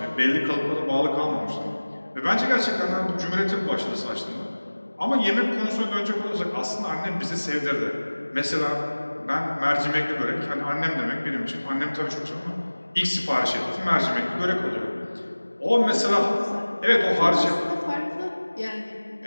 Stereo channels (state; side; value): inverted; both; correlation -1.00